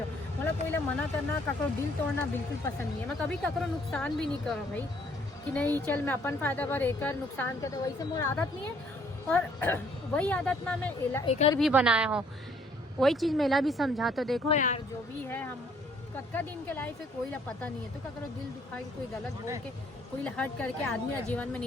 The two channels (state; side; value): normal; both; correlation 0.63